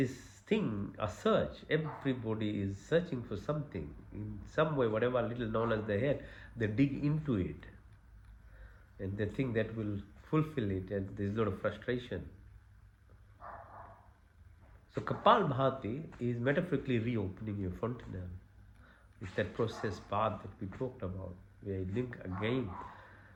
thing, a search. Everybody is searching for something. In some way, whatever little knowledge they had, they dig into it. And they think that will fulfill it, and there's a lot of frustration. So Kapalbhati is metaphorically reopening your fontanelle. It's that process path that we talked about, where you link again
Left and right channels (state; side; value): identical; both; correlation 1.00